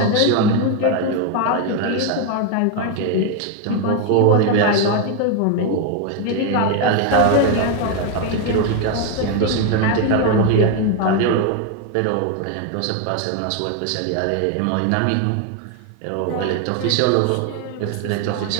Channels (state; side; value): different; both; correlation 0.01